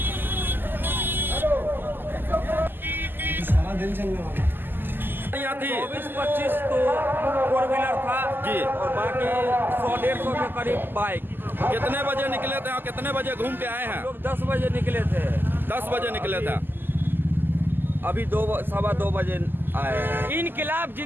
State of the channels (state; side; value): late; left; 0.093 ms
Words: सारा दिन चलने वाला 24-25 तो 4 व्हीलर था जी और बाकी 100-150 के करीब बाइक। कितने बजे निकले थे और कितने बजे घूम के आए हैं? लोग 10 बजे निकले थे। 10 बजे निकले थे। अभी 2-2:15 बजे आए हैं। इनकलाब